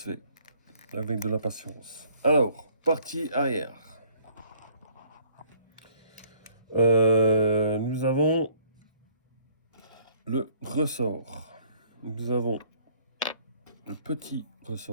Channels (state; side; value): inverted; both; correlation -0.60